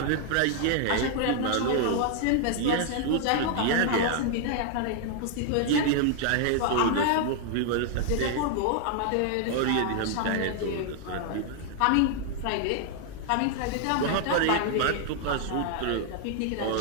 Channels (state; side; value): different; both; correlation 0.00